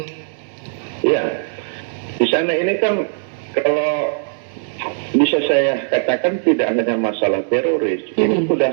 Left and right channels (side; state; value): left; silent; digital silence